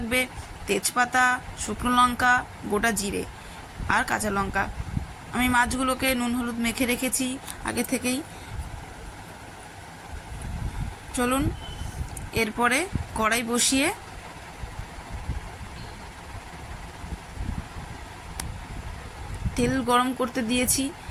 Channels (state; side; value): identical; both; correlation 1.00